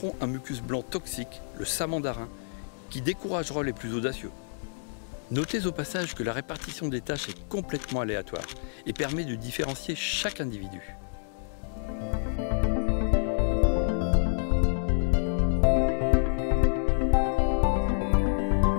un mucus blanc toxique, le samandarin, qui découragera les plus audacieux. Notez au passage que la répartition des tâches est complètement aléatoire et permet de différencier chaque individu.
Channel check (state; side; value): silent; right; digital silence